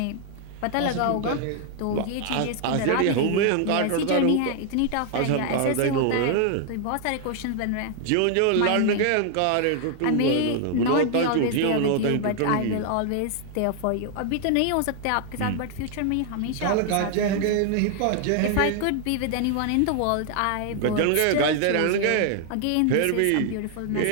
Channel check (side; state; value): both; different; correlation 0.00